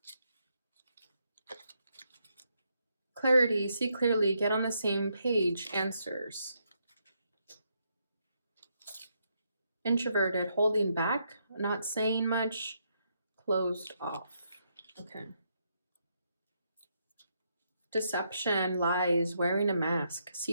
Clarity, see clearly, get on the same page, answers. Introverted, holding back, not saying much, closed off. Okay. Deception, lies, wearing a mask,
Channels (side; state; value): both; inverted; correlation -0.78